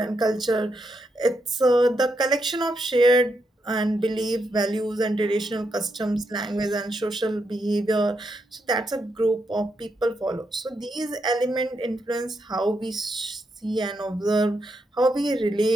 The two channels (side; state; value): both; normal; correlation 0.81